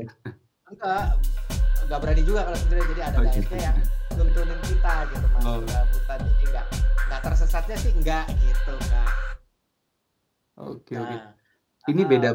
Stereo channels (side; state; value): both; identical; correlation 1.00